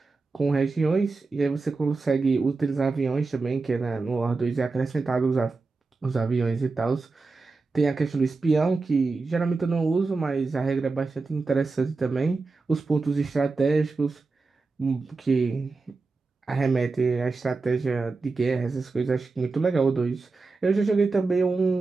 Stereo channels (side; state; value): left; quieter; 4.0 dB